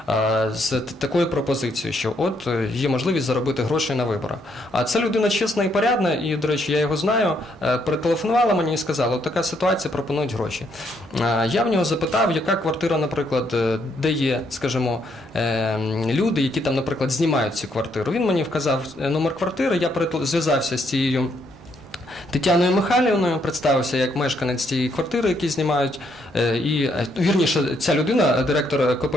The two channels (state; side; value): normal; both; correlation 0.73